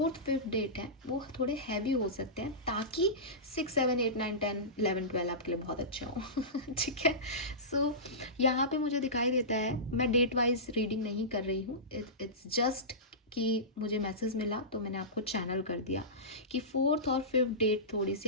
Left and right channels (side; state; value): both; normal; correlation -0.19